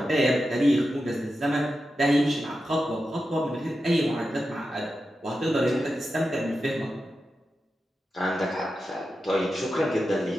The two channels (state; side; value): normal; both; correlation 0.90